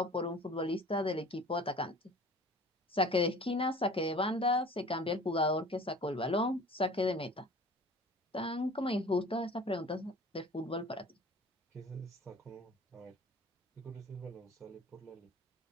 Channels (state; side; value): normal; both; correlation 0.45